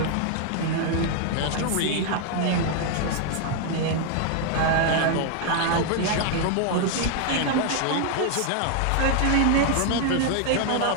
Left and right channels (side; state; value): both; different; correlation 0.00